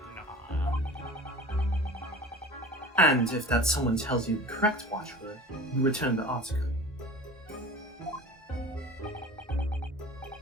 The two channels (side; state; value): both; normal; correlation 0.39